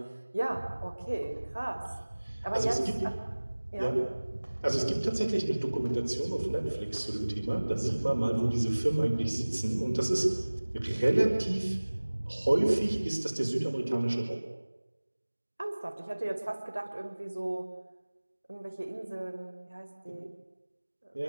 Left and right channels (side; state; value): both; inverted; correlation -1.00